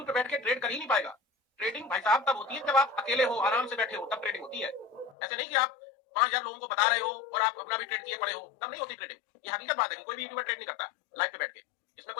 पे बैठ के ट्रेड कर ही नहीं पाएगा। ट्रेडिंग भाई साहब तब होती है जब आप अकेले हो, आराम से बैठे हो, तब ट्रेडिंग होती है। ऐसे नहीं कि आप 5000 लोगों को बता रहे हो और आप अपना भी ट्रेड किए पड़े हो, तब नहीं होती ट्रेडिंग। ये हकीकत बात है कि कोई भी यूट्यूबर ट्रेड नहीं करता लाइव पे बैठ के, इसमें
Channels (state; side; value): drops out; right; at 5.2 s